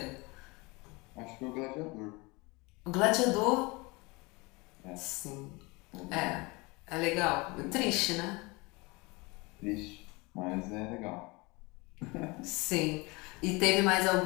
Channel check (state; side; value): quieter; right; 25.6 dB